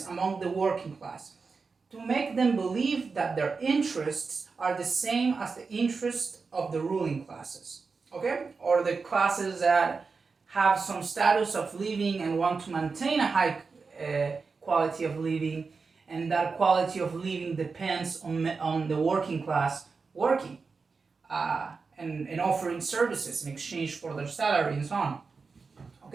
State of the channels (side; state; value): left; quieter; 4.7 dB